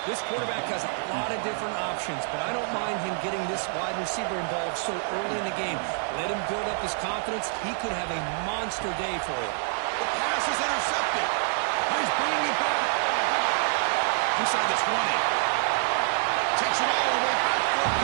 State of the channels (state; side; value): silent; left; 60 dB below the other